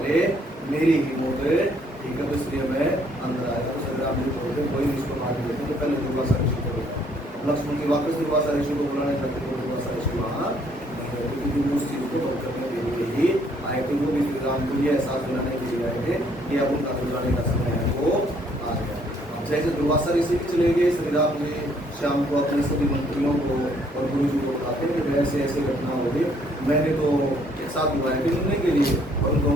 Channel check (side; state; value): both; normal; correlation 0.66